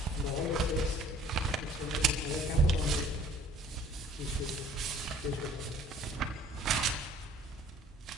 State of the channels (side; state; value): both; normal; correlation 0.54